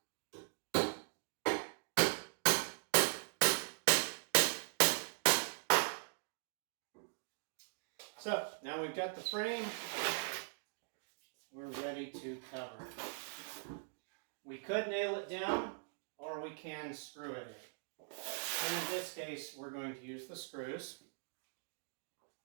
So now we've got the frame, we're ready to cover it. We could nail it down or we can screw it in. And in this case, we're going to use the screws.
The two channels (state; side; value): silent; left; digital silence